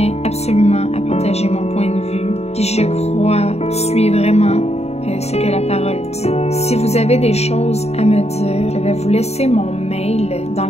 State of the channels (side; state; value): right; late; 0.31 ms